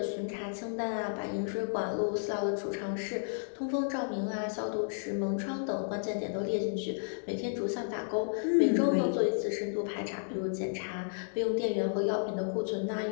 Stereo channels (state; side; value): silent; right; digital silence